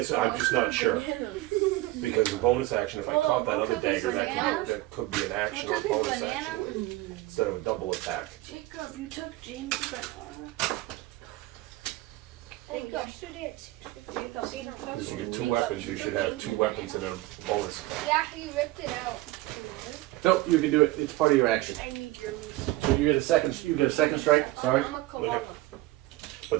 just not sure. Because the bonus action, if I caught that other dagger, that could be an action or bonus action. instead of a double attack. Jacob, you took James' banana. Jacob. Yesterday at 6:50. Because you get 2 weapons, you should have 2 weapons and a bonus. Yeah, he ripped it out. Nope, you can do it. It's part of your action. I need yours. So you get a second strike. Sorry. I'm a koala. Okay. But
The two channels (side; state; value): left; quieter; 18.2 dB